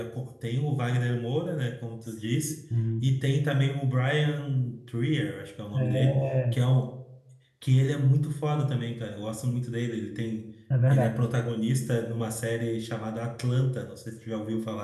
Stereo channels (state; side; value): identical; both; correlation 1.00